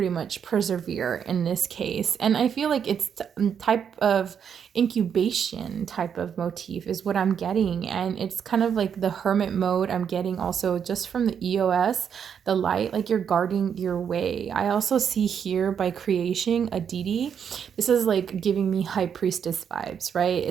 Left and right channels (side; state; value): left; quieter; 7.7 dB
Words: much persevere in this case? And I feel like it's type of incubation type of motif is what I'm getting. And it's kind of like the hermit mode I'm getting also just from the EOS, the light, like you're guarding your way. I also see here by creation a deity. This is like giving me high priestess vibes, right?